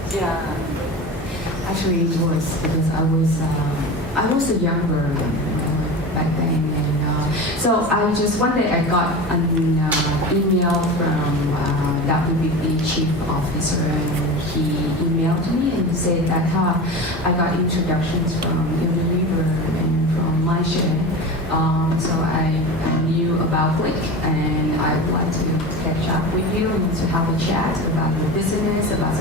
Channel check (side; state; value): both; normal; correlation 0.29